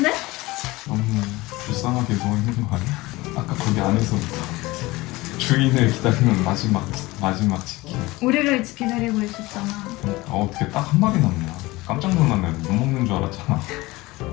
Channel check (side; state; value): right; quieter; 20.7 dB